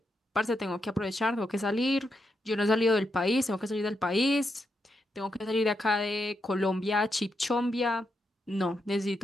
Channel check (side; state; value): both; normal; correlation 0.83